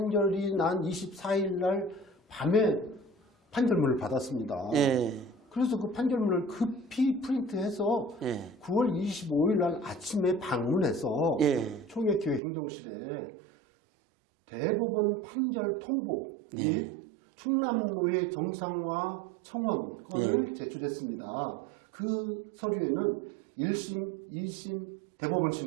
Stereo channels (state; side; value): drops out; left; at 12.4 s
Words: 난 24일 날 밤에 판결문을 받았습니다. 예. 그래서 그 판결문을 급히 프린트해서 예. 9월 25일 날 아침에 방문해서 예. 총회교회 행정실에 대법원 판결 통보 및 충남노회 정상화 청원권을 제출했습니다. 그 서류에는 1심, 2심,